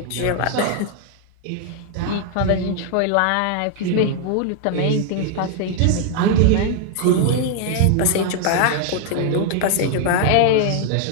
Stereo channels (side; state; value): both; different; correlation 0.00